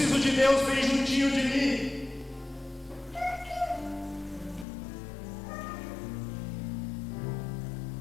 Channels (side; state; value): right; drops out; at 4.7 s